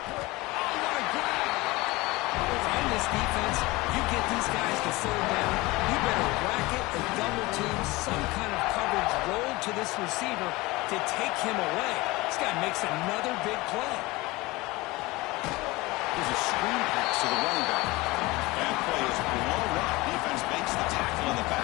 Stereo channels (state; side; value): quieter; right; 21.7 dB